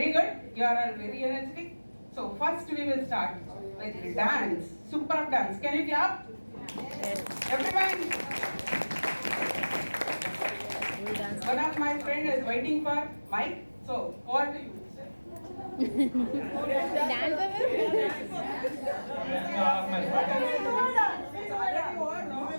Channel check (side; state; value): both; inverted; correlation -1.00